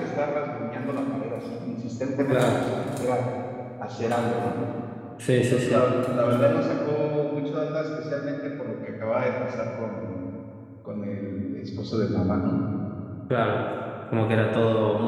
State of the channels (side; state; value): both; identical; correlation 1.00